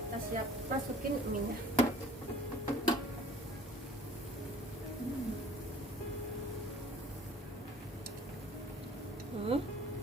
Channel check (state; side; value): normal; both; correlation 0.50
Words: Kita siap masukin mie-nya.